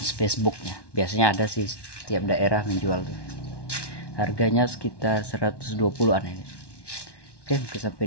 Facebooknya. Biasanya ada sih, setiap daerah menjual tuh. Harganya sekitar 120-an ini. Oke, mungkin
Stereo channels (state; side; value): late; right; 1.1 ms